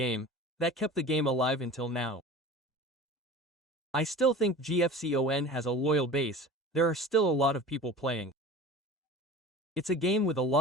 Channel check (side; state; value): both; normal; correlation 0.38